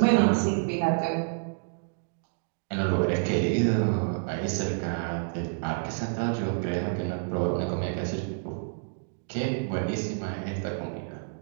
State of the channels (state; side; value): silent; left; digital silence